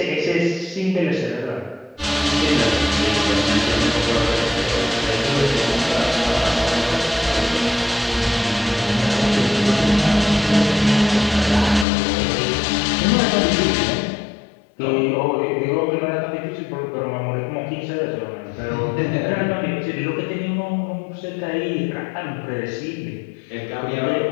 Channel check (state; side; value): drops out; right; at 11.9 s